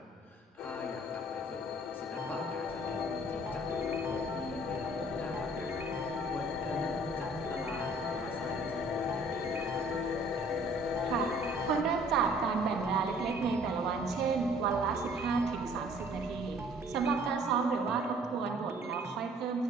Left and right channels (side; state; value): both; normal; correlation 0.55